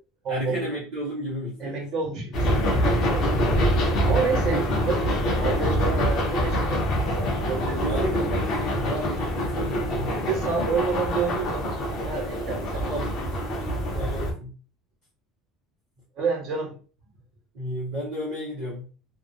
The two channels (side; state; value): both; normal; correlation 0.52